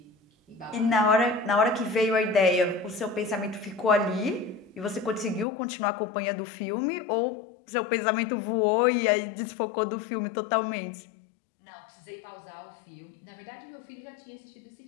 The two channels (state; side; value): drops out; right; at 5.5 s